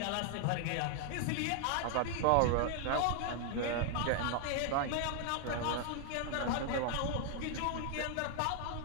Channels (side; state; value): both; different; correlation 0.00